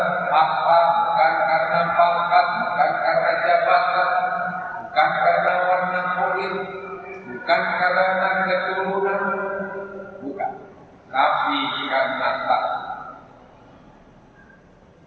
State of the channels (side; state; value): both; identical; correlation 1.00